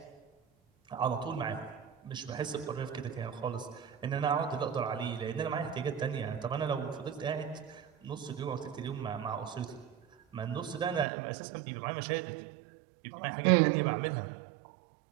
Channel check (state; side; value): drops out; left; at 11.1 s